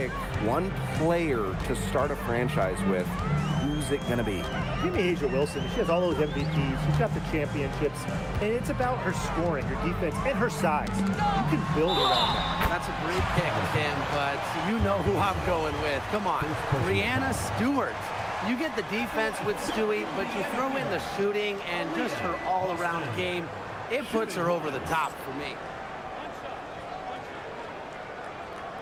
one player to start a franchise with, who's who's it going to be? Give me Asia Wilson. She has all those MVPs. She's got the championships. And it's about her scoring, her defense, and her size. You can build around that. That's a great pick, Tim, but you know who I'm going with. Come on, Brianna Stewart. You get the defense with Stewie, but you throw in the shooting and just her all-around game. It puts her over the top for me.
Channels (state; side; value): identical; both; correlation 1.00